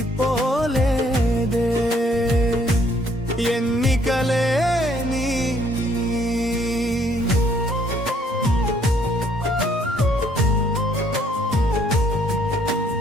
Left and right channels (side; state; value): both; normal; correlation 0.65